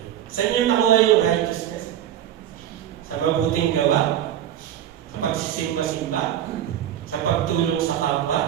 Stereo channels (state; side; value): quieter; left; 11.0 dB